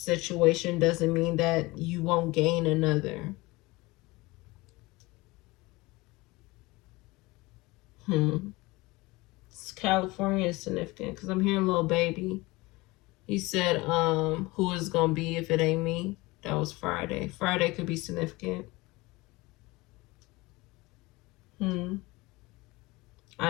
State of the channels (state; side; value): quieter; right; 22.2 dB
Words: doesn't mean that you won't gain another. California is significant because I'm hearing little baby. He said, who is gonna be if it ain't me? That was Friday. Friday could be significant.